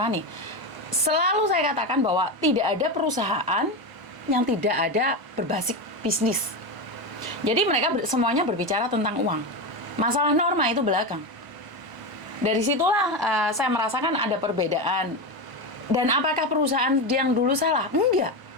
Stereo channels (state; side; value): late; left; 1.0 ms